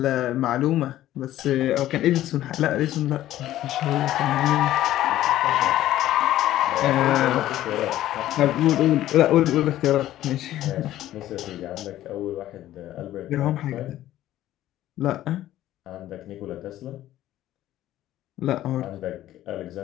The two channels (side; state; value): right; quieter; 13.7 dB